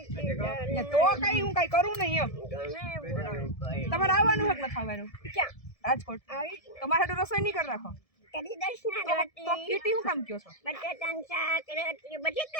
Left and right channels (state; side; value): late; right; 1.7 ms